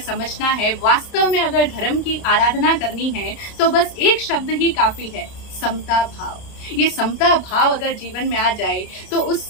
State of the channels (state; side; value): late; right; 30 ms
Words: समझना है, वास्तव में अगर धर्म की आराधना करनी है तो बस एक शब्द ही काफी है, समता भाव। ये समता भाव अगर जीवन में आ जाए तो उस